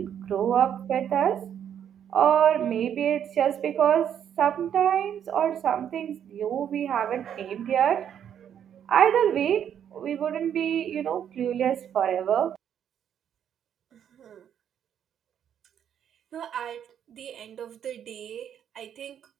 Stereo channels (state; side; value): quieter; left; 9.2 dB